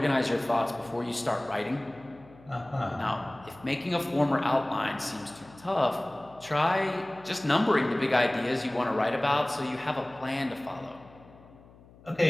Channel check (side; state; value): left; noise; hum, 24 dB below the sound